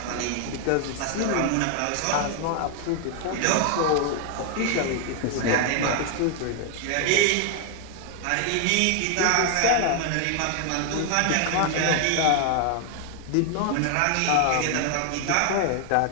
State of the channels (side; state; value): both; different; correlation 0.00